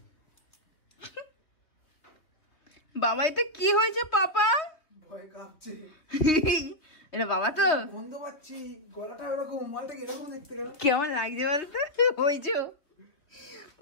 বাবা এটা কি হয়েছে পাপা? ভয় কাঁপছে। এটা বাবা তো গন্ধ পাচ্ছি, গলাটা এরকম, মালটা এরকম দেখতে গেল। কেমন লাগছে বলতো? ওই যে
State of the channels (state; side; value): late; right; 3.2 ms